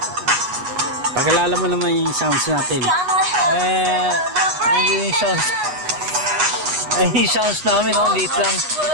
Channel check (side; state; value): left; late; 8.3 ms